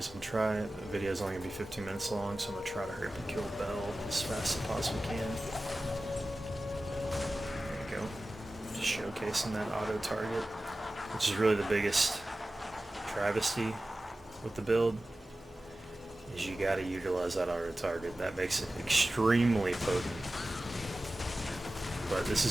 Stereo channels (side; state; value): both; normal; correlation 0.96